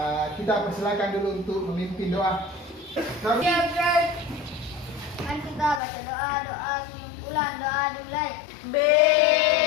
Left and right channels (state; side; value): drops out; right; at 5.8 s